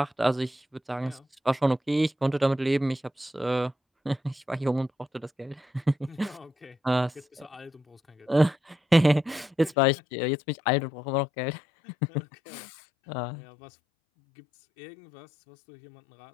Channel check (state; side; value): drops out; right; at 9.8 s